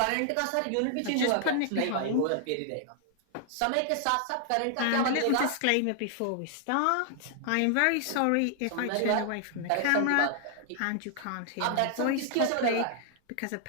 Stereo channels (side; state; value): both; different; correlation 0.00